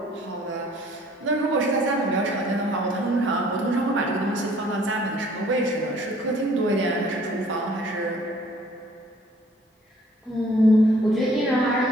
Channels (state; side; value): normal; both; correlation 0.57